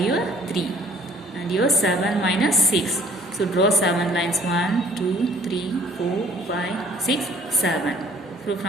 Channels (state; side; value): normal; both; correlation 0.57